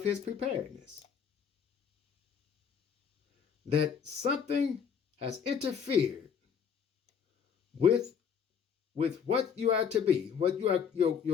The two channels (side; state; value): right; quieter; 7.2 dB